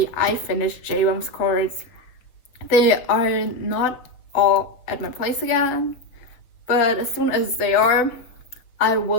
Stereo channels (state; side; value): late; right; 7.2 ms